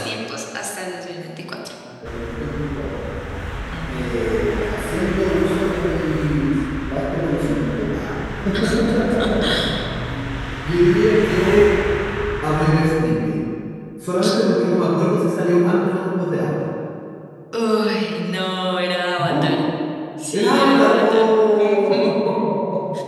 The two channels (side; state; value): both; identical; correlation 1.00